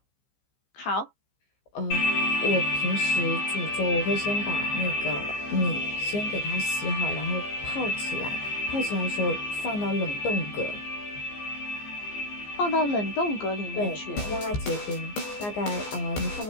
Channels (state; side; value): late; right; 15 ms